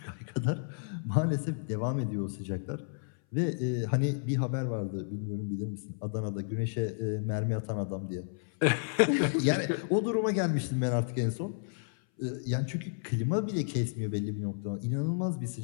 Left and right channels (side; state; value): right; silent; 57 dB below the other